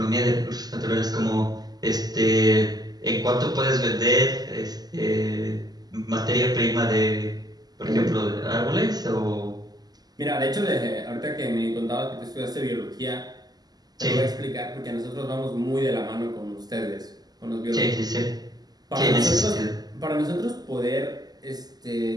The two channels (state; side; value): late; left; 0.19 ms